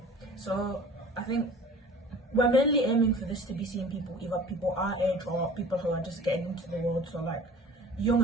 So I think we're mainly aiming for this to be seeing people, either people our age or people who are just getting into the world. So like young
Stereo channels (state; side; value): normal; both; correlation 0.44